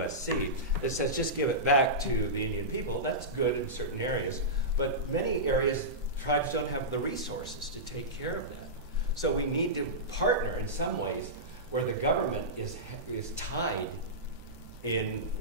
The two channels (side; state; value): left; late; 8.1 ms